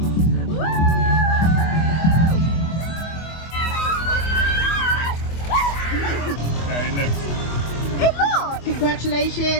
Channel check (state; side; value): late; right; 25 ms